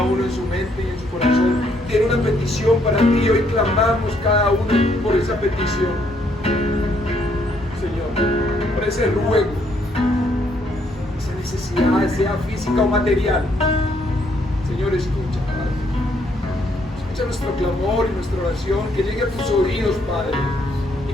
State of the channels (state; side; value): normal; both; correlation 0.71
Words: uno en su mente y en su corazón tiene una petición para ti. Hoy clamamos cada uno por esa petición, Señor, por ese ruego, esa necesidad, sea física o material. Señor, escucha, Padre. Escucha nuestro clamor y nuestra oración, que llegue a tus oídos, Padre, y